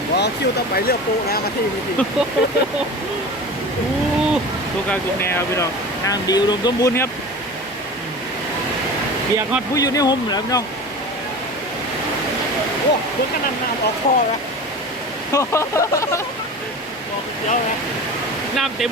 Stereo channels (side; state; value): both; normal; correlation 0.34